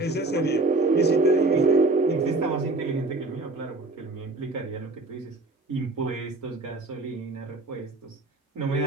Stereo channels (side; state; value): left; quieter; 3.1 dB